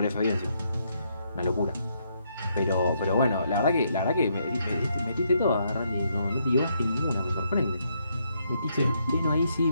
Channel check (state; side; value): inverted; both; correlation -0.75